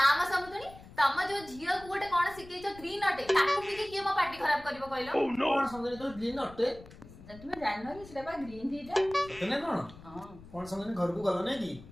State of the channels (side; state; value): left; noise; rumble, 19 dB below the sound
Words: समुदनी तम जो झियो को गोटे कोन सिकै छ ग्रीन अटे ताको पी के के मो पार्टी खराब करबो कहलो कोन समझे तो ग्रीन अटे तुम जाननो कि सेटा बा ग्रीन टीटा सतने कोन हां कोन समझे घर को गलो नहीं